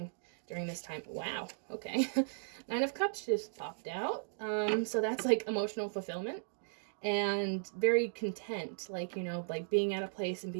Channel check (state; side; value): silent; left; digital silence